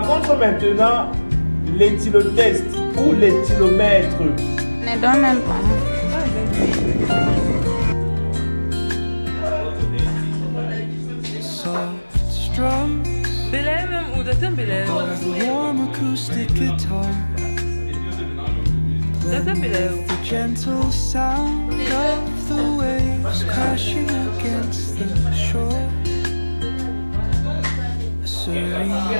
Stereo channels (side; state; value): both; inverted; correlation -1.00